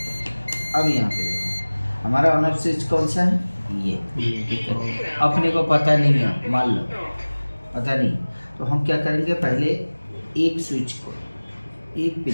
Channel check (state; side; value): inverted; both; correlation -1.00